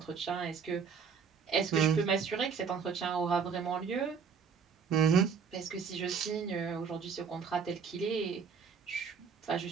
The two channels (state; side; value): quieter; left; 6.2 dB